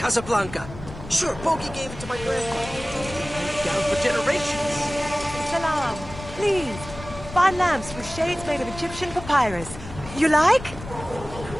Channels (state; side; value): noise; left; rumble, 13 dB below the sound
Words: Sure, Bogey gave it to my grandfather. Down for generations. Salam. Please. Fine lamps with shades made of Egyptian papyrus. You like?